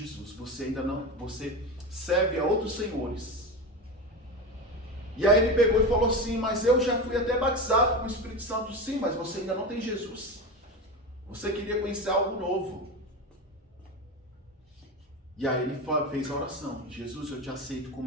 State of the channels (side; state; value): both; normal; correlation 0.22